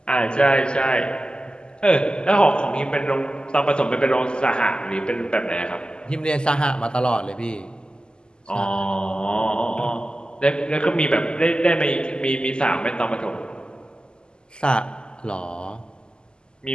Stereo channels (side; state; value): right; late; 0.047 ms